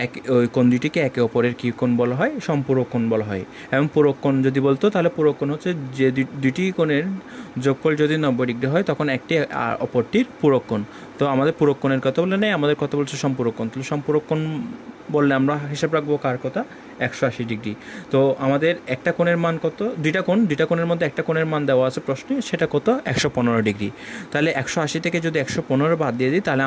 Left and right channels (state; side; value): identical; both; correlation 1.00